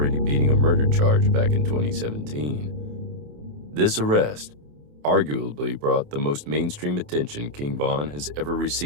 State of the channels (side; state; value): left; late; 28 ms